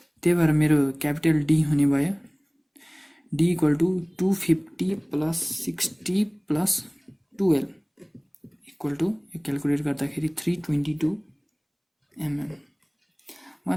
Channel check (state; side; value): identical; both; correlation 1.00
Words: त्यही भएर मेरो क्यापिटल डी हुने भयो d equal to 250 plus 60 plus 12 equal to, यो क्यालकुलेट गर्दाखेरि 322 mm।